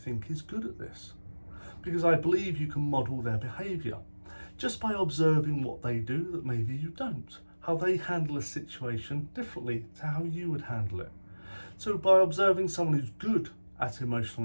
is good at this. Because I believe you can model their behaviour just by observing what they do that maybe you don't, how they handle a situation differently to how you would handle it. So by observing someone who's good at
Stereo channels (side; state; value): both; inverted; correlation -1.00